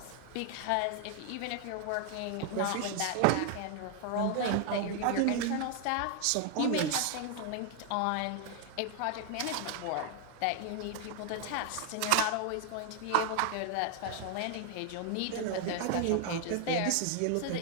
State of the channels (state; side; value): different; both; correlation 0.00